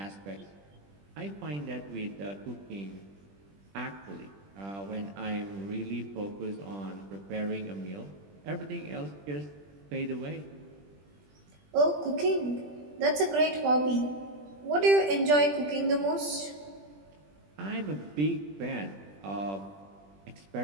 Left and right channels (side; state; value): left; late; 20 ms